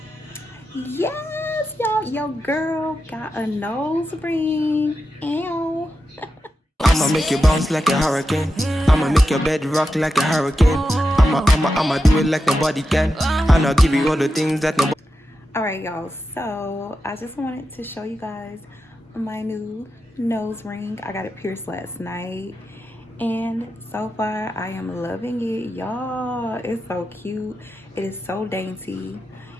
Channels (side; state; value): both; normal; correlation 0.89